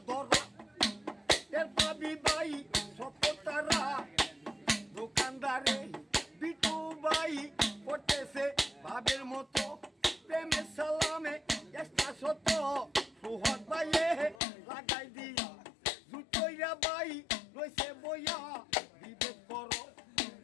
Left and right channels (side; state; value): right; drops out; at 14.4 s